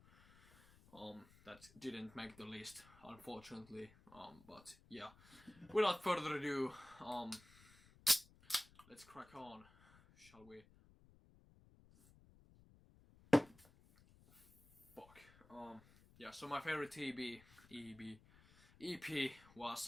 that didn't make the list, unfortunately. But yeah, without further ado, let's crack on, shall we? Fuck. Yeah, so my favorite EP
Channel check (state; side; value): noise; left; rumble, 24 dB below the sound